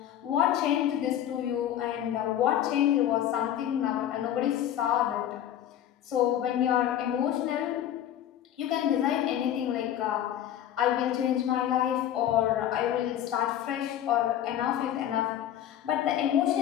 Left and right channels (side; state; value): right; quieter; 11.2 dB